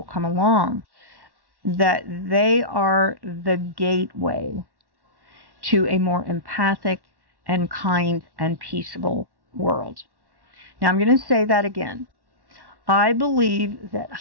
come along, that they are the gateway to a more empathic and kind and peaceable world. Now I'm going to say that again. I believe that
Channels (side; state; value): left; late; 1.1 ms